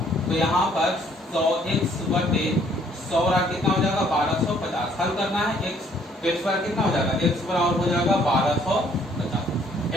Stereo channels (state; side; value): normal; both; correlation 0.63